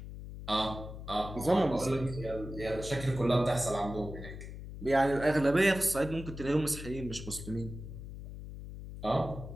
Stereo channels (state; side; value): noise; left; hum, 11 dB below the sound